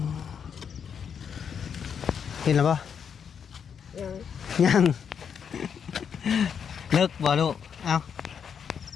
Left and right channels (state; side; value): quieter; right; 7.3 dB